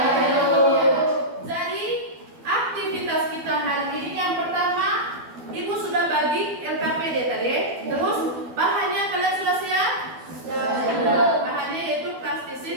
Jadi aktivitas kita hari ini yang pertama, Ibu sudah bagi LKPD tadi. Terus bahannya kalian sudah siap? Bahannya yaitu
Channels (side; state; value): left; late; 12 ms